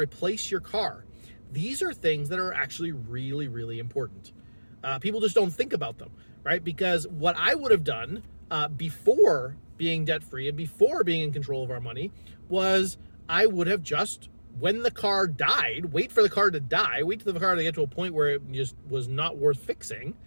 your car. These are things that are actually really, really important. People just don't think about them, right? Because what I would have done before being debt-free and before being in control of our money was I would have just, when the car died, wait for the car to die, wait for the car to get to a point where it just was not worth fixing,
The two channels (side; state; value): both; inverted; correlation -1.00